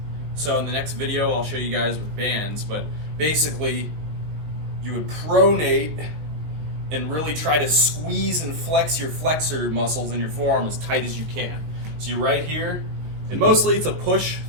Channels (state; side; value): late; left; 19 ms